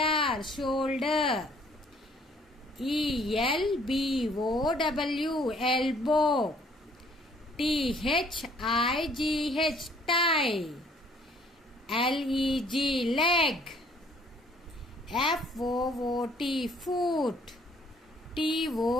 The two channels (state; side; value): normal; both; correlation 0.60